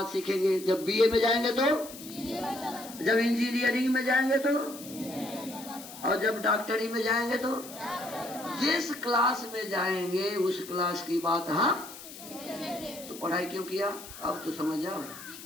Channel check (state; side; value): noise; left; hiss, 14 dB below the sound